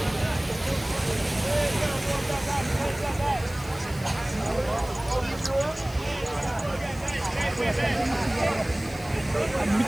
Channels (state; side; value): noise; left; hiss, 19 dB below the sound